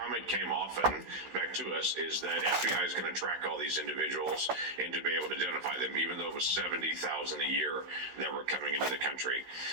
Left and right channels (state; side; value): late; left; 16 ms